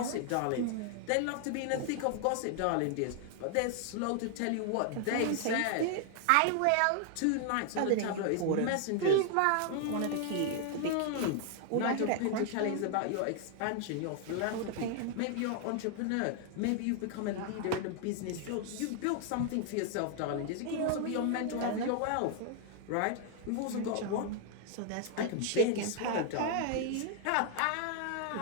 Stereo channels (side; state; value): both; different; correlation 0.00